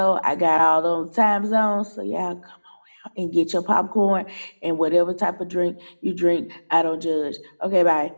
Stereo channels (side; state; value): both; inverted; correlation -1.00